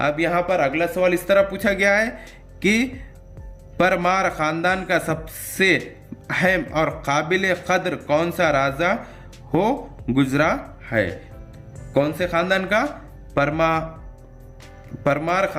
यहाँ पर अगला सवाल इस तरह पूछा गया है कि परमार खानदान का सबसे अहम और काबिल कद्र कौन सा राजा हो गुजरा है? कौन से खानदान का? परमार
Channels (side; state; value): both; identical; correlation 1.00